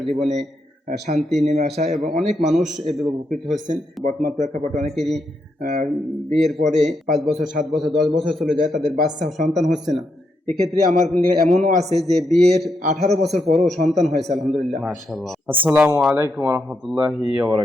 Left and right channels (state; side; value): normal; both; correlation 0.81